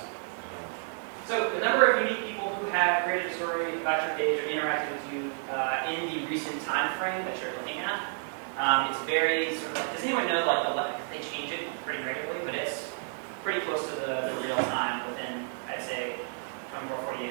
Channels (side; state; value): left; silent; 57 dB below the other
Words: So the number of unique people who have created a story about your page or interacted with you in the recent time frame that you're looking at, it's very sort of like, does anyone know like they change it pretty regularly, but it's pretty close to the real time within, I'd say, 24, 48